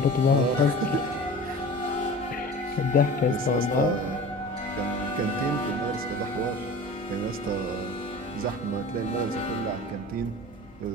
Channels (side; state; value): both; normal; correlation 0.38